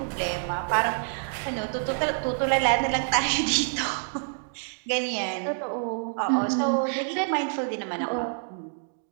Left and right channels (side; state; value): left; silent; digital silence